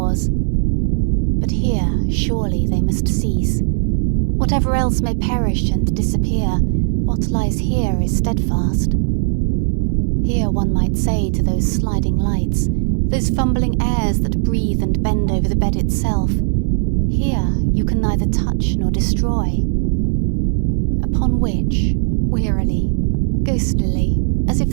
But here, surely, they must cease. Whatever else may perish and disappear, what lies here is steadfast. Here one might say to those sliding lights, those fumbling airs that breathe and bend over the bed itself, here you can neither touch nor destroy. Upon which, wearily, ghostlily, as if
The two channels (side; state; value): left; silent; digital silence